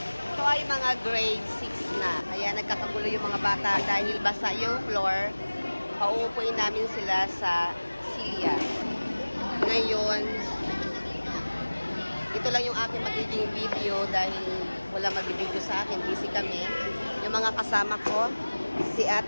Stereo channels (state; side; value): inverted; both; correlation -1.00